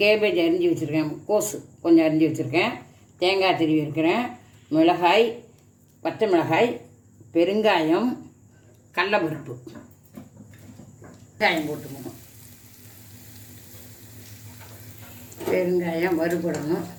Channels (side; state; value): both; identical; correlation 1.00